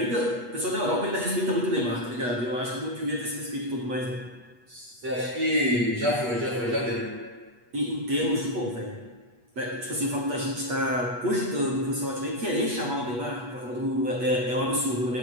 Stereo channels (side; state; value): left; late; 8.2 ms